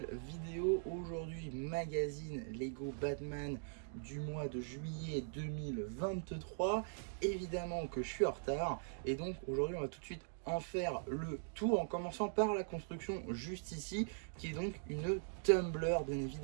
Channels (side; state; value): left; silent; digital silence